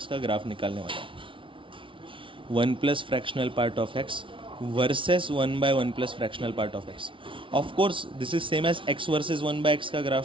का ग्राफ निकालने वाला हूँ। 1 plus fractional part of x versus 1 by 1 plus fractional part of x. Of course this is same as x versus 1 by x का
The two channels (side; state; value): left; late; 0.25 ms